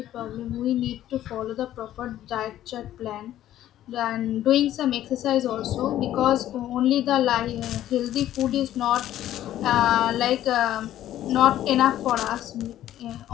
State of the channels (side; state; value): right; quieter; 12.7 dB